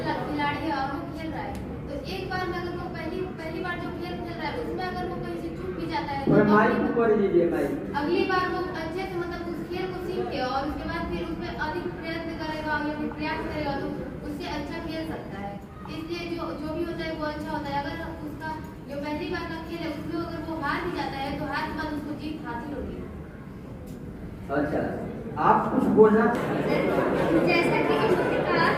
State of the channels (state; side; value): identical; both; correlation 1.00